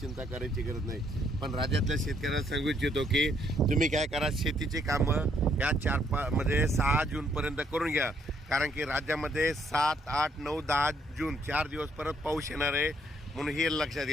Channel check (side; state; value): both; normal; correlation 0.69